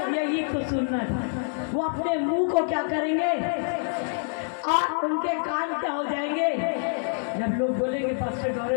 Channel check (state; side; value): silent; right; 61 dB below the other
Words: यही तो सुनना था। वो अपने मुंह को क्या करेंगे और उनके कान क्या हो जाएंगे? जब लोग बोलेंगे पास्टर